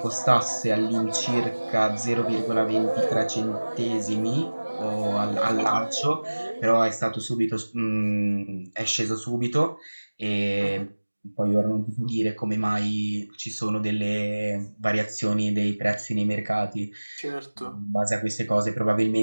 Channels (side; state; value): both; inverted; correlation -1.00